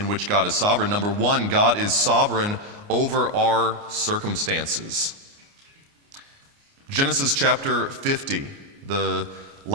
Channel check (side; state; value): left; late; 29 ms